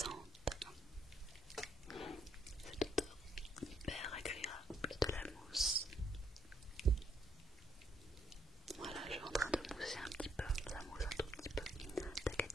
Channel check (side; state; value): both; normal; correlation 0.70